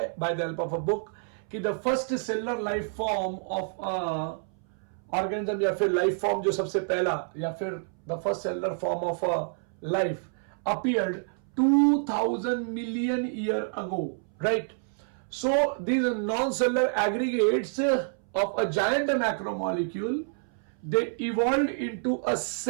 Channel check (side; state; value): left; silent; 59 dB below the other